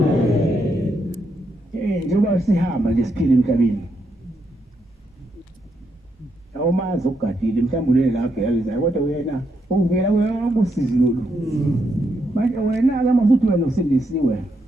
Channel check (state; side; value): normal; both; correlation 0.80